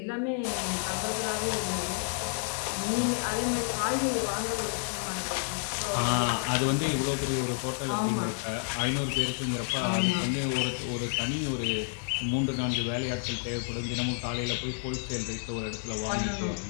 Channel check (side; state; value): right; silent; 58 dB below the other